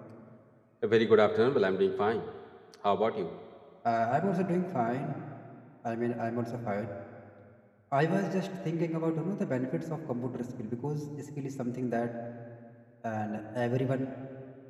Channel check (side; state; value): both; identical; correlation 1.00